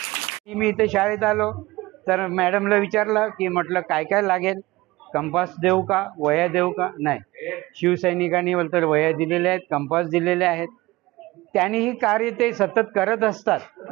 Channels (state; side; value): quieter; left; 20.2 dB